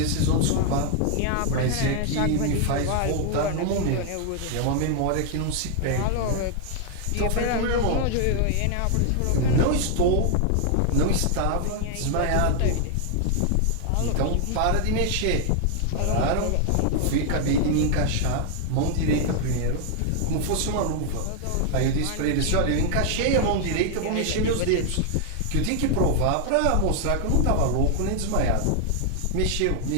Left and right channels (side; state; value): both; different; correlation 0.00